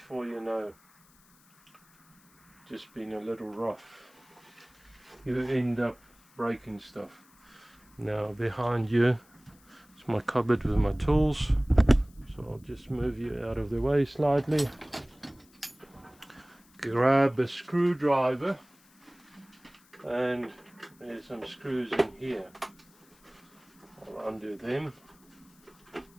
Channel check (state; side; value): noise; left; hiss, 29 dB below the sound